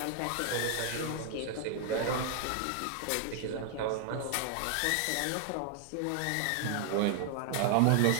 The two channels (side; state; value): both; different; correlation 0.00